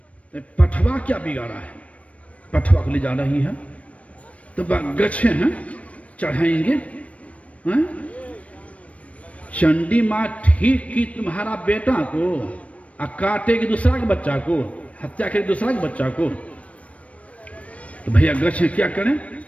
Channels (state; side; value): late; right; 0.065 ms